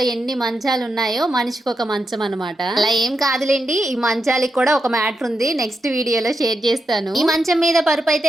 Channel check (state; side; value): normal; both; correlation 0.86